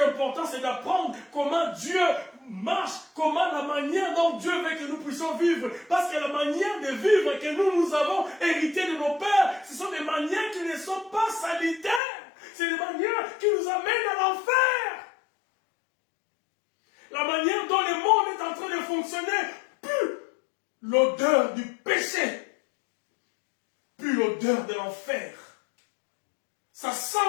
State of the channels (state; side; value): drops out; right; at 12.0 s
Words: important, c'est d'apprendre comment Dieu marche, comment la manière dont Dieu veut que nous puissions vivre, parce que la manière de vivre que nous avons hérité de nos pères, ce sont des manières qui ne sont pas salutaires, c'est des manières qui nous amènent à l'enfer. La manière dont le monde est en train de fonctionner pue l'odeur du péché, pue l'odeur de l'enfer. Ça sent